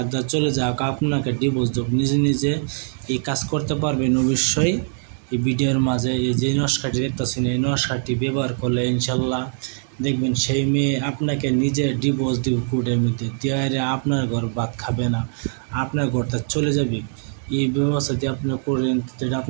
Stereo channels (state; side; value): silent; left; digital silence